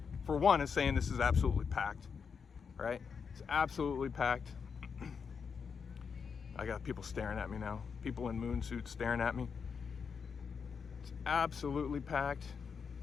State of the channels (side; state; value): right; quieter; 6.1 dB